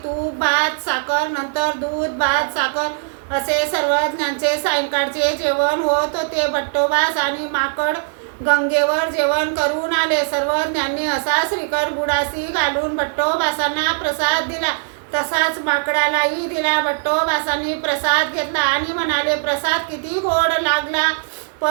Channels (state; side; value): silent; left; digital silence